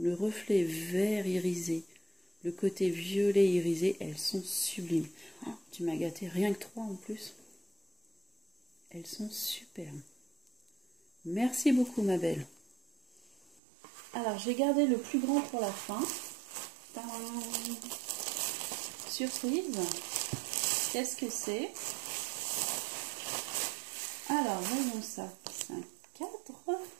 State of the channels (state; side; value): drops out; left; at 13.6 s